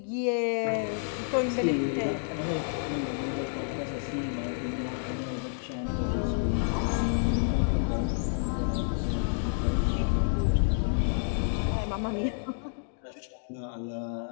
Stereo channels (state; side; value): silent; right; digital silence